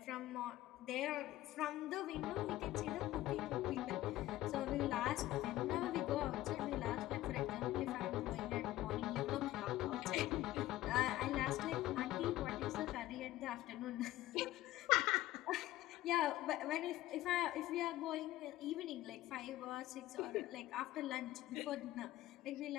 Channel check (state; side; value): quieter; right; 15.9 dB